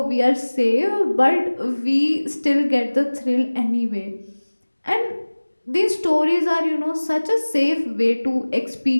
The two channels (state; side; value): inverted; both; correlation -1.00